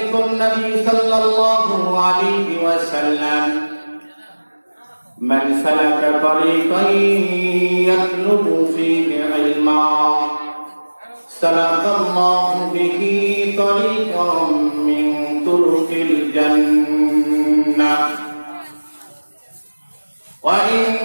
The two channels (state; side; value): inverted; both; correlation -1.00